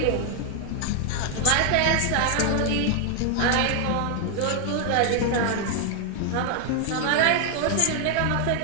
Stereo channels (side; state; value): both; different; correlation 0.00